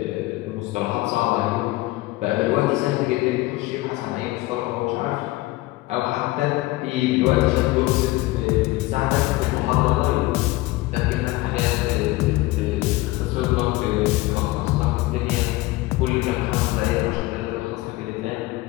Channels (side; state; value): right; quieter; 19.3 dB